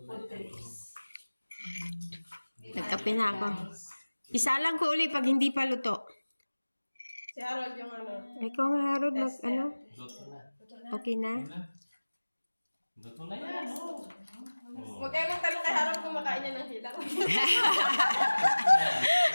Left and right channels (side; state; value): both; inverted; correlation -1.00